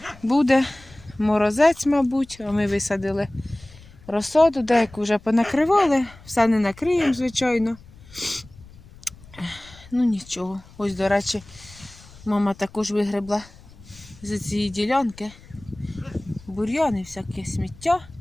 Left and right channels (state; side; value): noise; left; rumble, 22 dB below the sound